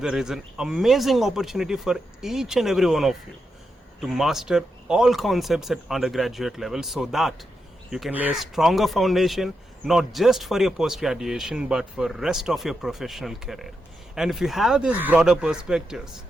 is an amazing opportunity for each and every one of you to master all concepts at undergraduate level so that you can lay a stronger foundation not just for your post-graduation but for rest of your professional career. And if you have these broader perspectives,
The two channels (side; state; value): both; normal; correlation 0.85